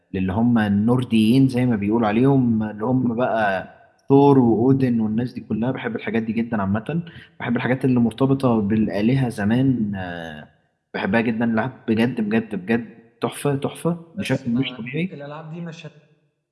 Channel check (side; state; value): both; identical; correlation 1.00